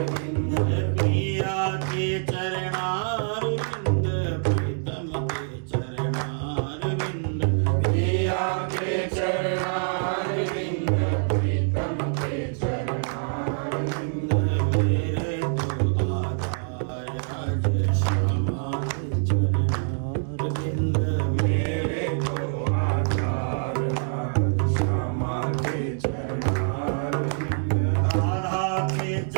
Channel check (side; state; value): left; silent; digital silence